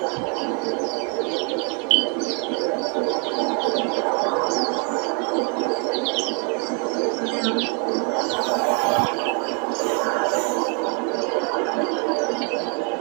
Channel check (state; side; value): quieter; left; 38.2 dB